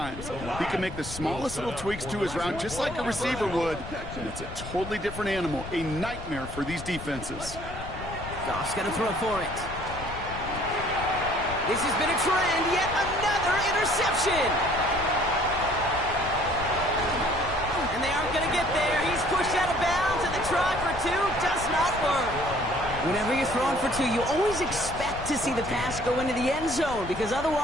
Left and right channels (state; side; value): noise; left; rumble, 11 dB below the sound